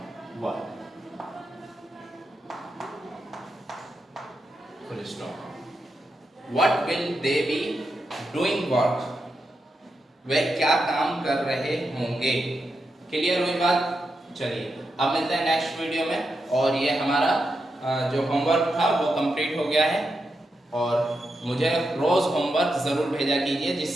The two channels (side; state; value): both; normal; correlation 0.86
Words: work, full stop. What will they be doing work, वह क्या काम कर रहे होंगे। क्लियर हुई बात। चलिए अब मिलते हैं नेक्स्ट वीडियो में, और ये हमारा जो होमवर्क था वो कंप्लीट हो गया है, और मुझे रोज होमवर्क जरूर भेजा कीजिए